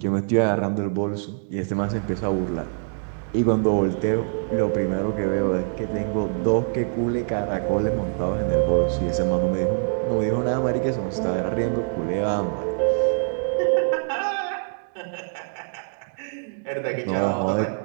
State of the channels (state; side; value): silent; left; 62 dB below the other